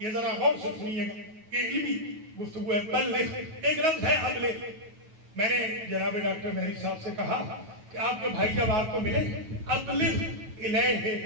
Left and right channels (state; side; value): late; left; 9.3 ms